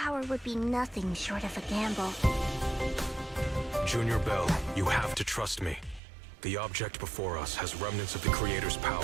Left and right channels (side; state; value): left; drops out; at 6.0 s